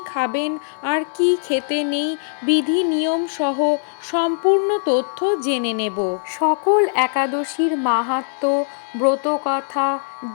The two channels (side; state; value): right; silent; digital silence